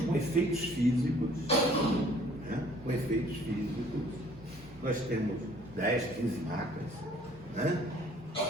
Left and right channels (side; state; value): both; normal; correlation 0.57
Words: com efeitos físicos, né? Com efeitos físicos, nós temos 10, 15 máquinas, né?